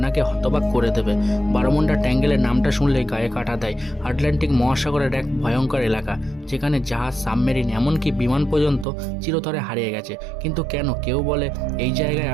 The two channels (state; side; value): drops out; left; at 8.8 s